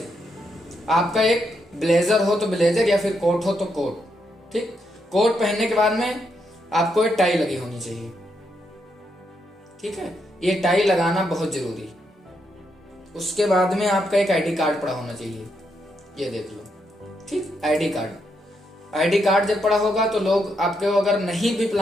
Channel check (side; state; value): both; normal; correlation 0.79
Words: आपका एक ब्लेजर हो तो ब्लेजर या फिर कोट हो तो कोट। ठीक, कोट पहनने के बाद में आपको एक टाई लगी होनी चाहिए। ठीक है, ये टाई लगाना बहुत जरूरी। उसके बाद में आपका एक आईडी कार्ड पड़ा होना चाहिए, ये देख लो। ठीक, आईडी कार्ड जब पड़ा होगा तो लोग आपके अगर नहीं भी